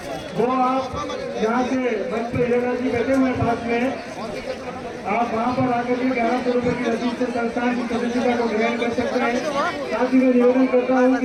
वो आप यहाँ से मंच पर हिरेला जी बैठे हुए पास में, आप वहाँ पर आकर के 1100 रुपये की रसीद से संस्थान की सदस्यता को ग्रहण कर सकते हैं। साथ ही मैं निवेदन करता हूँ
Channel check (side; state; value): both; identical; correlation 1.00